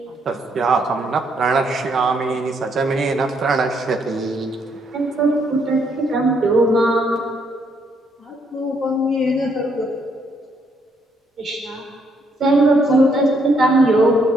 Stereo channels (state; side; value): normal; both; correlation 0.72